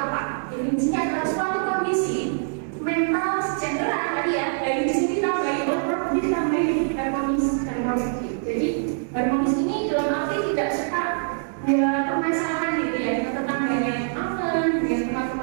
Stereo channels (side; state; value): left; silent; 62 dB below the other